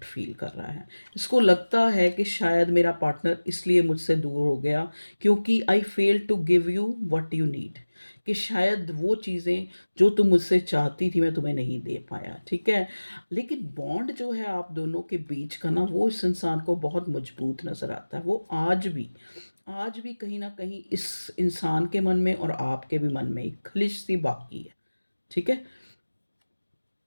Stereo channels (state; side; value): inverted; both; correlation -1.00